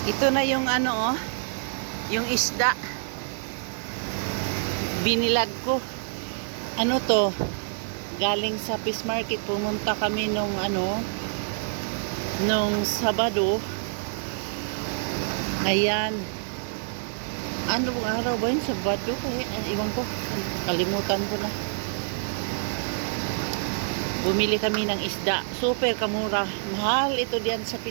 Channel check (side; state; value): left; silent; digital silence